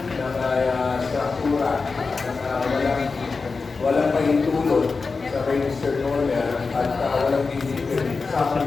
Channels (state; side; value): quieter; right; 4.4 dB